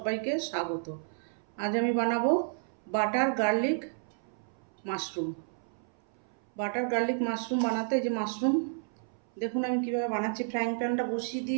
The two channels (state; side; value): silent; left; 57 dB below the other